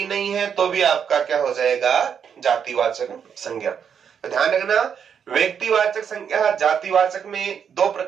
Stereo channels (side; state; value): left; quieter; 7.5 dB